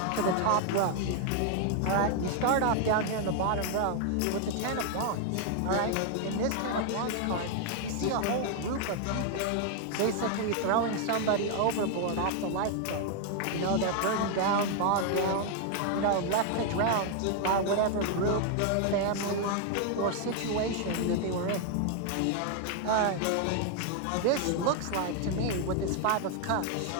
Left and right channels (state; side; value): different; both; correlation 0.00